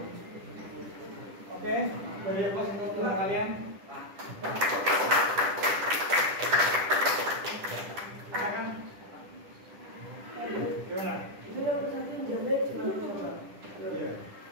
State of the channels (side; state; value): left; late; 10 ms